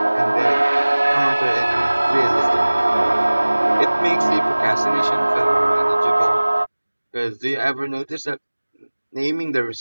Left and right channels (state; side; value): inverted; both; correlation -1.00